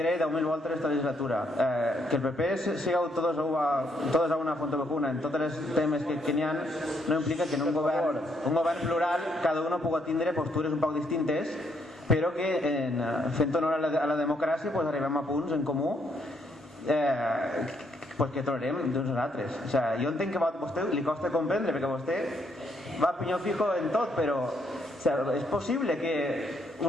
10.000 voltes esta legislatura. Que el PP siga todos a una fonte vacuna en tots els temes que n'hi ha no implica que en un govern plural cada uno pugui tindre postures un poc distintes, però que fent honor a la democràcia pues arribem a punts en comú pues que trobarem d'uns altres. O sea, jo entenc que a vostè li costa comprendre perquè vostè va a pinyó fijo en tot, però és possible que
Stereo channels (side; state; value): both; normal; correlation 0.73